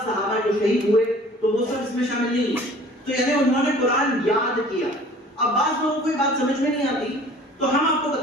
صحابہ جو شہید ہوئے، تو وہ سب اس میں شامل نہیں ہیں۔ تو یعنی انہوں نے قرآن یاد کیا۔ اب بعض لوگوں کو یہ بات سمجھ میں نہیں آتی، تو ہم آپ کو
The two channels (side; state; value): both; normal; correlation 0.49